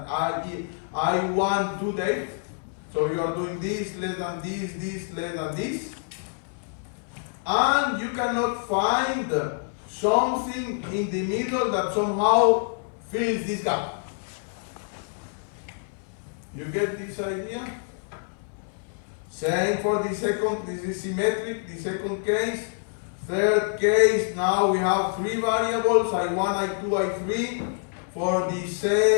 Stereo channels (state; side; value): silent; right; 61 dB below the other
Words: I1 to date. So you are doing this less than this less than this. And you cannot find something in the middle that somehow fills this gap. You get this idea? Same for the second, this is symmetric, the second case. Third case, now we have three variables, I1, I2, I3, for the